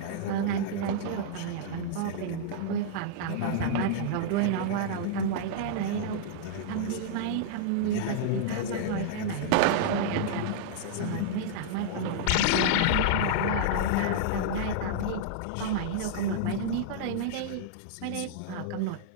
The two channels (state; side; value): different; both; correlation -0.02